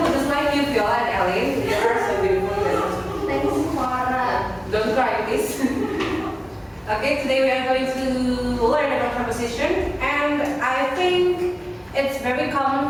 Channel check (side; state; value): both; identical; correlation 1.00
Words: just like you, Viola and Ellen. You are so beautiful. Thanks, Farah. Don't cry, please. Okay, today we are going to learn about preposition, and I think it's very